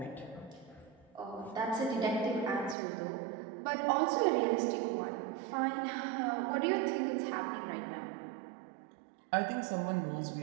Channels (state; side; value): drops out; left; at 2.8 s